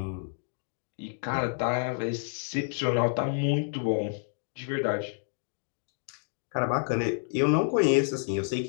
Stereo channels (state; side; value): silent; right; digital silence